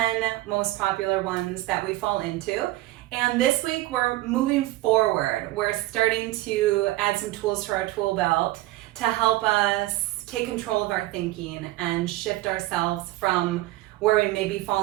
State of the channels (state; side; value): quieter; left; 17.5 dB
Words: most popular ones that we fall into. And this week we're moving forward. We're starting to add some tools to our tool belt to help us take control of our thinking and shift ourselves from where we may be